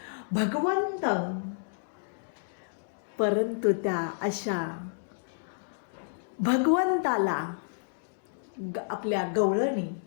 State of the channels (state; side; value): silent; right; digital silence